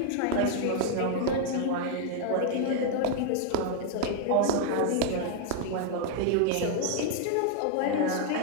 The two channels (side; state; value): both; different; correlation 0.00